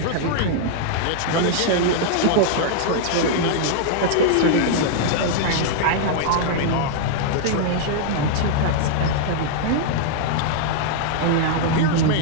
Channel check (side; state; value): both; different; correlation -0.01